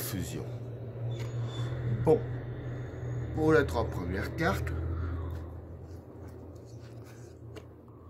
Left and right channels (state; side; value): identical; both; correlation 1.00